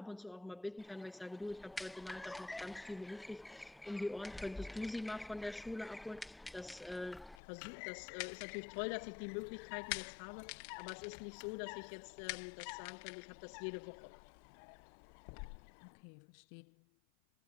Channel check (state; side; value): drops out; right; at 7.4 s